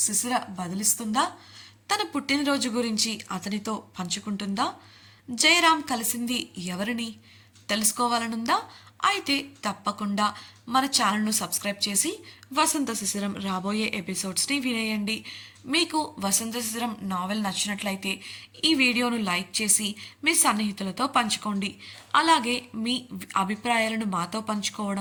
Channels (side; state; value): both; identical; correlation 1.00